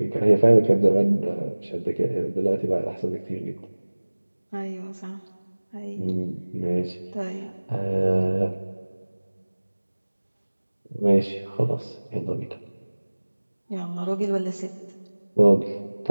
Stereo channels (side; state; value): both; inverted; correlation -1.00